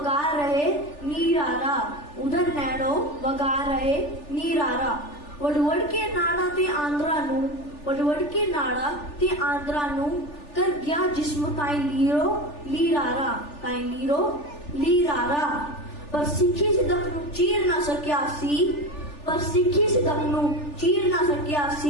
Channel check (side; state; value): right; late; 3.4 ms